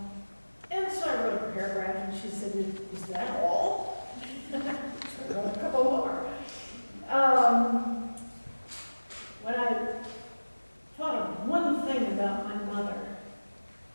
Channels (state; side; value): inverted; both; correlation -1.00